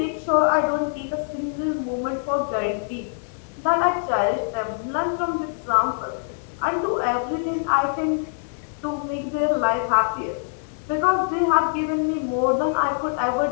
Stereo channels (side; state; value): right; silent; 63 dB below the other